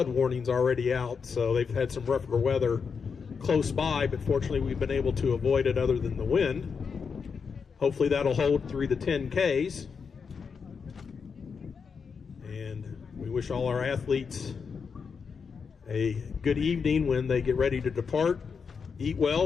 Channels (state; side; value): quieter; right; 5.8 dB